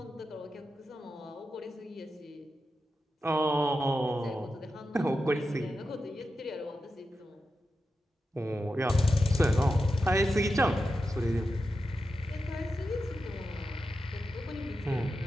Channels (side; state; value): both; normal; correlation 0.90